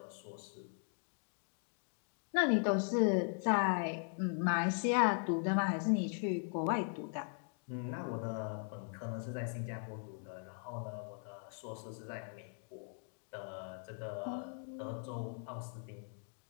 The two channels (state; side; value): silent; right; 52 dB below the other